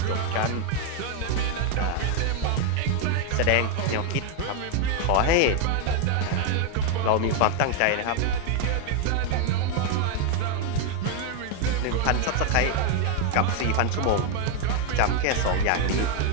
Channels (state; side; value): different; both; correlation 0.01